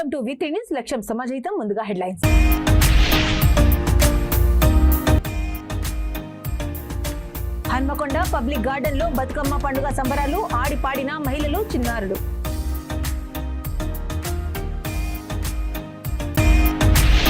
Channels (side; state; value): both; identical; correlation 1.00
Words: to వి3 news. లక్ష్యం సమాజహితం. ముందుగా హెడ్లైన్స్. హన్మకొండ పబ్లిక్ గార్డెన్ లో బతుకమ్మ పండుగ సంబరాలు. ఆడిపాడిన మహిళలు, చిన్నారులు.